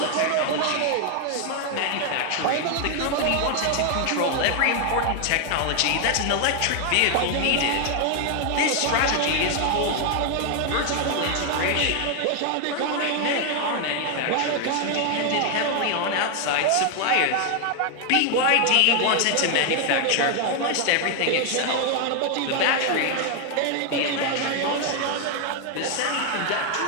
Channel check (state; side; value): different; both; correlation 0.00